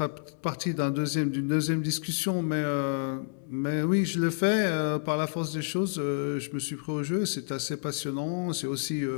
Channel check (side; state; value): right; silent; 58 dB below the other